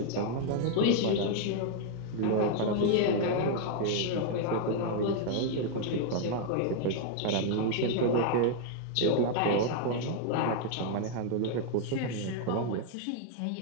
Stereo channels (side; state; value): both; different; correlation 0.00